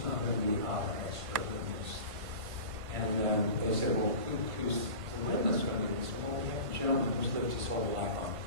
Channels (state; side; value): late; left; 1.5 ms